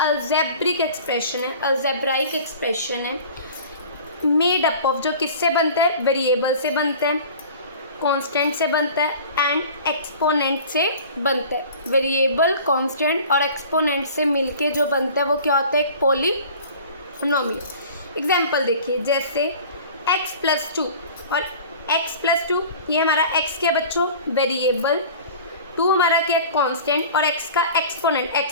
एक्सप्रेशन है, अल्जेब्राइक एक्सप्रेशन है, मेड अप ऑफ, जो किससे बनता है? वेरिएबल से बनता है, कांस्टेंट से बनता है एंड एक्सपोनेंट से बनता है। वेरिएबल, कांस्टेंट और एक्सपोनेंट से मिलके जो बनता है वो क्या होता है? एक पॉलीनोमियल। एग्जाम्पल देखिए, जैसे x+2 और x+2, ये हमारा x क्या बच्चों? वेरिएबल, 2 हमारा क्या? कांस्टेंट, और x का एक्सपोनेंट।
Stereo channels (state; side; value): inverted; both; correlation -0.42